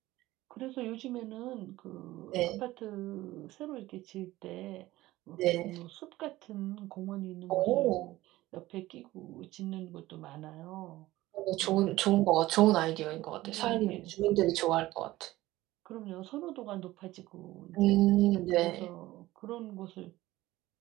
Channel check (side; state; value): left; quieter; 17.1 dB